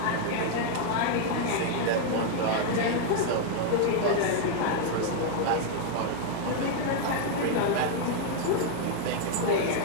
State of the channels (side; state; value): both; different; correlation 0.00